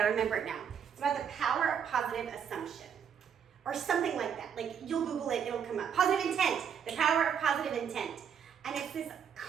remember it now. It's about the power of positive assumption. Or something like that. Like, you'll Google it, it'll come up. Positive intent. The power of positive intent. And it's this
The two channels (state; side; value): quieter; left; 7.8 dB